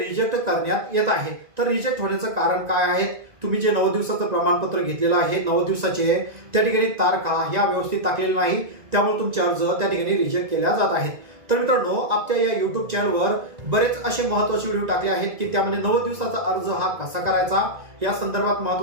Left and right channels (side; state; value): left; late; 1.9 ms